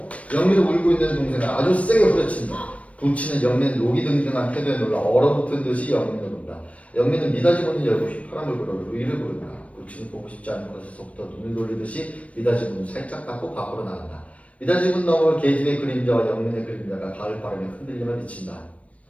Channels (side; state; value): right; late; 0.065 ms